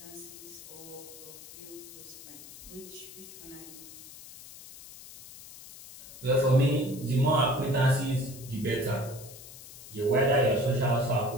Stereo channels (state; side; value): noise; left; hiss, 16 dB below the sound